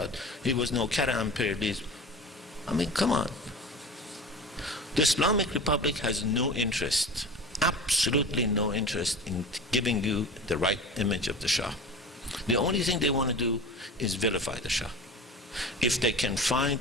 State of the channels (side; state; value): both; normal; correlation 0.35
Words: It was no Kara imperialism. I mean, come on. The Islamic Republic has no interest, absolutely no interest in giving you the right image of the Shah. The only thing they want to do is vilify the Shah. If they can find